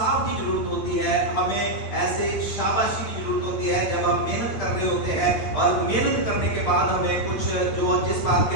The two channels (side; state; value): right; late; 9.1 ms